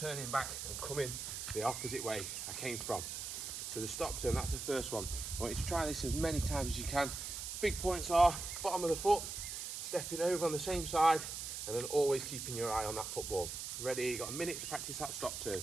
back and coming the opposite way I came from. So the stop turn, that's the first one. I want you to try this as many times as you can. Big points are bottom of the foot, stepping over on the same side, and then always keeping your eye on that football. Ready, you've got a minute to practice that stop turn.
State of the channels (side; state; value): right; noise; hiss, 6 dB below the sound